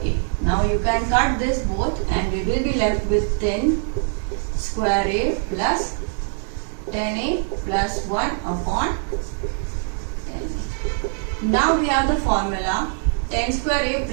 Now you can cut this both and we will be left with 10 square a plus 10a plus 1 upon 10a. Now we have the formula 10 square a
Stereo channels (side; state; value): left; silent; 57 dB below the other